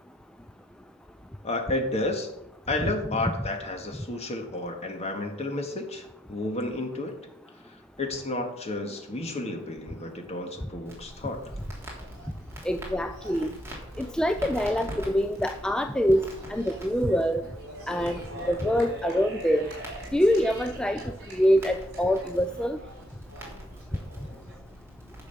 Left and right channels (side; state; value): both; normal; correlation 0.75